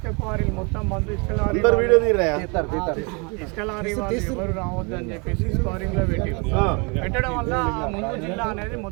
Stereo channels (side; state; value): left; quieter; 31.6 dB